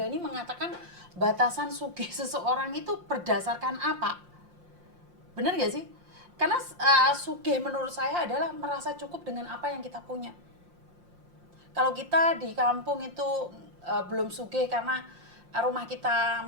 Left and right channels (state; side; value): late; left; 5.7 ms